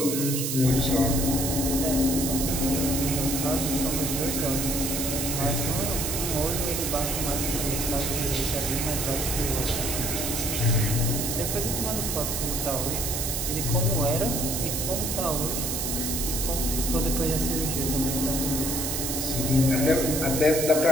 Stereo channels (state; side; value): noise; right; hiss, 1 dB below the sound